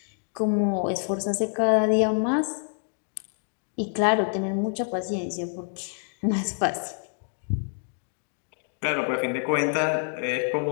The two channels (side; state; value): right; silent; digital silence